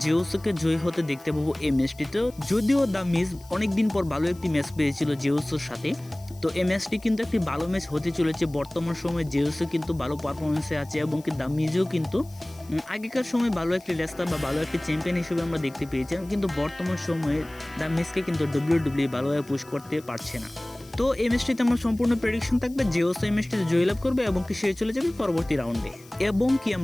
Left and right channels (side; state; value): left; noise; hiss, 24 dB below the sound